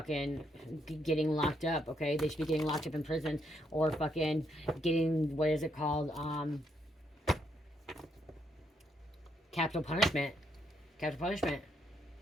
getting locked up, okay? They should be getting locked up in prison or fucking getting, what is it called? Capital punishment. Capital punishment.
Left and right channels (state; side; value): normal; both; correlation 0.76